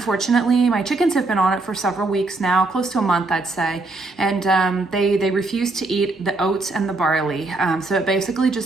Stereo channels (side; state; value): left; quieter; 3.2 dB